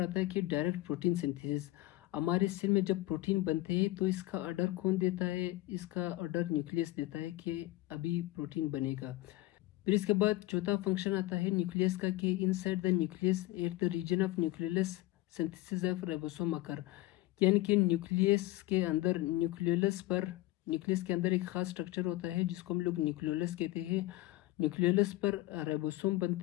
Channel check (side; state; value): right; quieter; 17.6 dB